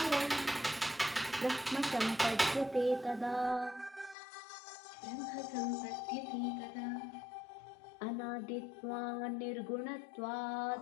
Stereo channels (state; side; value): drops out; right; at 4.2 s